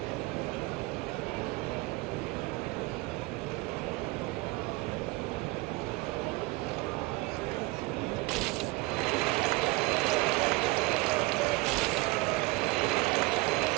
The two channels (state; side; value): quieter; left; 23.2 dB